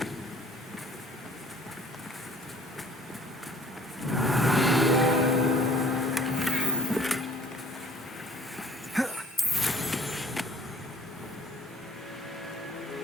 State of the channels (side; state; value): both; normal; correlation 0.53